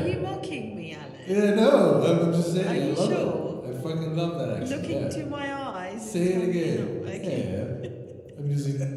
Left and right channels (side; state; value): both; identical; correlation 1.00